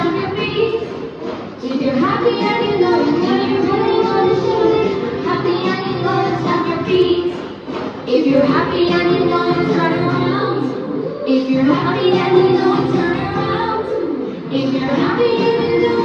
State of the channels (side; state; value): both; identical; correlation 1.00